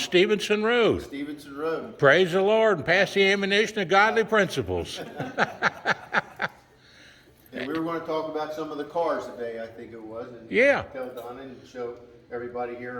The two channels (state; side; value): identical; both; correlation 1.00